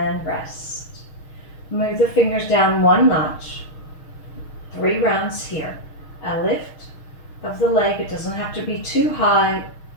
rest. Move the fingers down one notch. 3 rounds here. A lift of the leg. It doesn't have to be too high.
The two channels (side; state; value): right; late; 6.4 ms